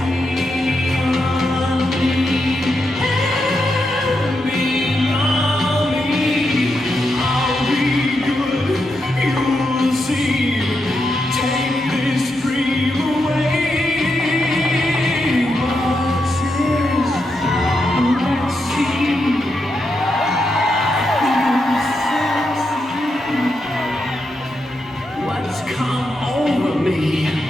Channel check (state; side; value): normal; both; correlation 0.84